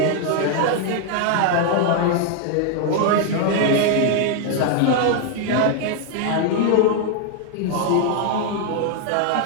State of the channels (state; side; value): different; both; correlation 0.00